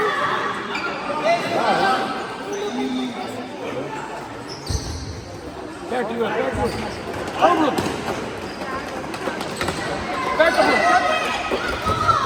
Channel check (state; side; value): identical; both; correlation 1.00